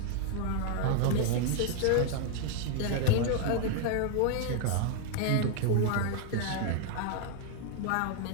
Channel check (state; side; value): different; both; correlation 0.00